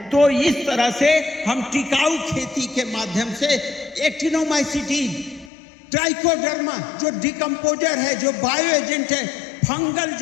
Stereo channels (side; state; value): right; drops out; at 5.5 s